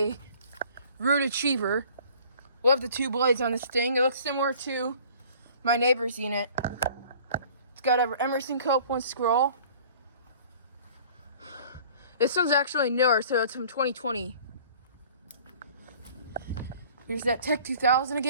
Ruud Achiever. Love the 2 blades on this thing. It looks similar to my neighbor's unit. It's got an Emerson Copeland scroll. This one's actually newer, so it's from 2020. Here's that Tech 2000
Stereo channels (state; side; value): inverted; both; correlation -0.50